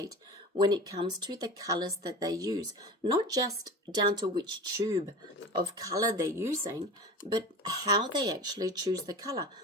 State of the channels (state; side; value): normal; both; correlation 0.33